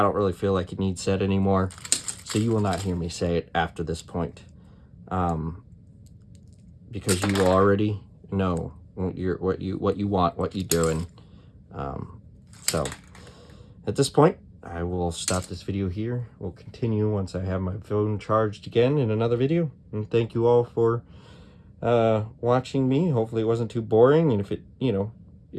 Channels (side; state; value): both; identical; correlation 1.00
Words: really feel like it needs said anymore. So you will not hear me say it after this point. Because you already know what you want, what you're doing. So at this point, I will stop this video here. We'll continue once I have my phone charged again in another video. And thank you all for watching me. Hopefully it wasn't too boring. And if it,